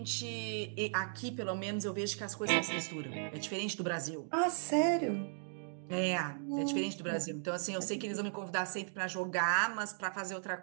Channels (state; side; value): silent; left; digital silence